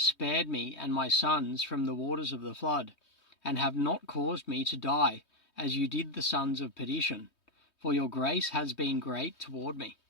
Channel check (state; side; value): late; right; 3.2 ms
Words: spared me and my sons from the waters of the flood, and have not caused me to die, as you did the sons of perdition, for your grace has been great toward me,